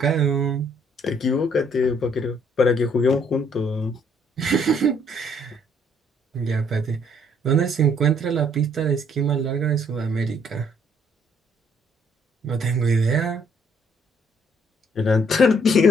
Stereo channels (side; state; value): both; normal; correlation 0.66